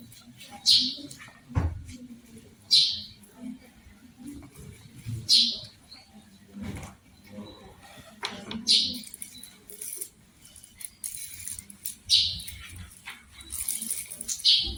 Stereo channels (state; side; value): identical; both; correlation 1.00